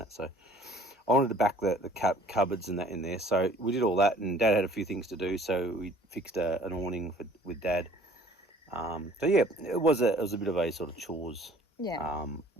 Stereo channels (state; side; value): normal; both; correlation 0.53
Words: that. So I wanted to back the cupboards and that in there. So we did all that, and Dad had a few things to do. So we fixed an awning with Dad. So yeah, it was a bit of a sort of chores